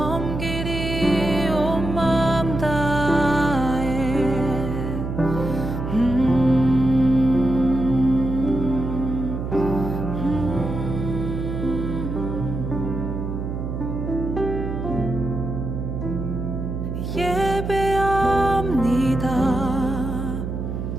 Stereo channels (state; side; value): noise; right; hum, 4 dB below the sound